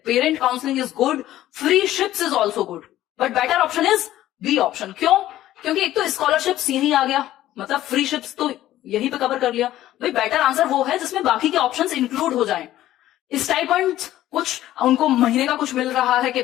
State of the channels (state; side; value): quieter; right; 13.9 dB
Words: Parent counselling is good, freeships is also good, but better option is B option. क्यों? क्योंकि एक तो स्कॉलरशिप्स यही आ गया, मतलब फ्री शिप्स तो यहीं पे कवर कर लिया। भाई बेटर आंसर वो है जिसमें बाकी के ऑप्शंस इंक्लूड हो जाएं। स्टाइपेंड कुछ उनको महीने का कुछ मिल रहा है कि